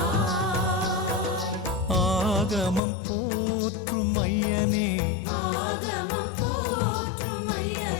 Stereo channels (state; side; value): drops out; right; at 2.8 s